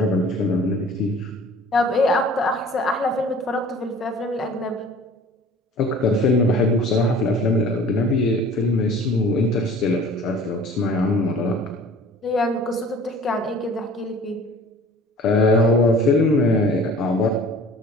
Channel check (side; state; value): both; normal; correlation 0.47